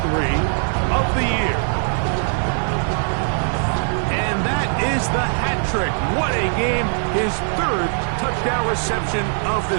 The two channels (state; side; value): silent; left; 56 dB below the other